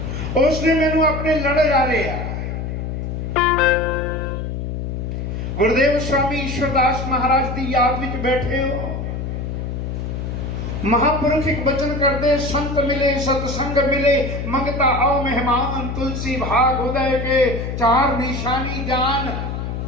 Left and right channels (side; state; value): left; noise; hum, 4 dB below the sound